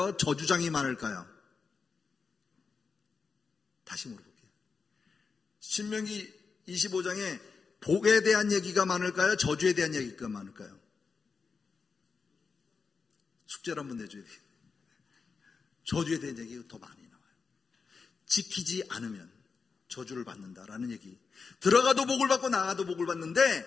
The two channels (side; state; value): right; quieter; 5.0 dB